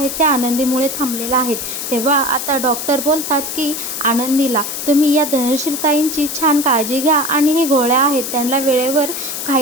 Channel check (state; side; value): noise; left; hiss, 5 dB below the sound